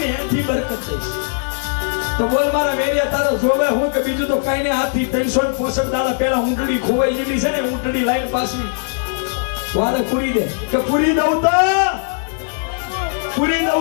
એથી બરકત થઈશ. તો બોલ મારા મેરિયા તારો જોવે હું કે બીજું તો કઈ ને હાથથી 365 દાડા પહેલા ઊંટડી ખોવાઈ ગયેલી છે ને ઊંટડી લાઈન પાછી વારે પૂરી દે કે પૂરી દઉં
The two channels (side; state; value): right; silent; 63 dB below the other